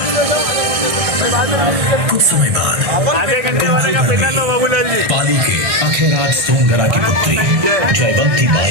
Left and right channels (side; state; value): left; late; 1.6 ms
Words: कुछ समय बाद कुंभलगढ़ में पाली के अखेराज सोनगरा की पुत्री जयवंती